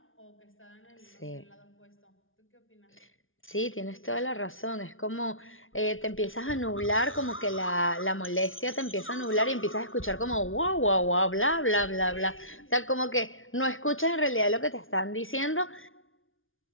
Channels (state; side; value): late; right; 0.58 ms